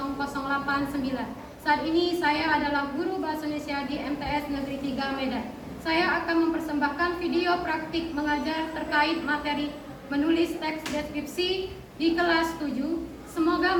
Saat ini saya adalah guru bahasa Indonesia di MTS Negeri 3 Medan. Saya akan mempersembahkan video praktik mengajar terkait materi menulis teks deskripsi di kelas 7. Semoga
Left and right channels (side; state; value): both; identical; correlation 1.00